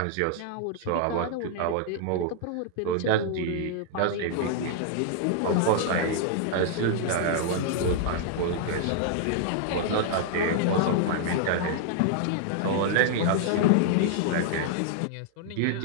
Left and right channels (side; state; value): both; different; correlation -0.01